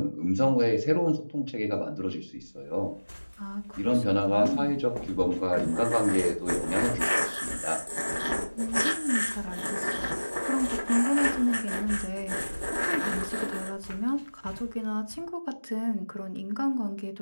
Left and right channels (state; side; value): inverted; both; correlation -1.00